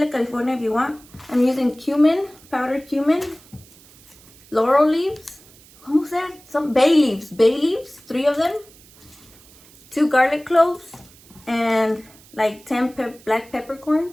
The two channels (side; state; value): right; noise; hiss, 25 dB below the sound